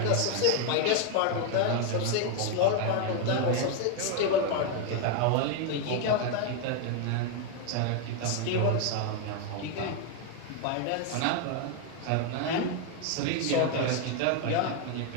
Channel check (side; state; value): both; different; correlation 0.01